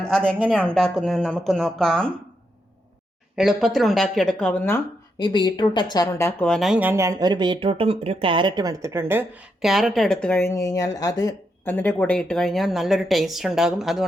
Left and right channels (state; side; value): normal; both; correlation 0.81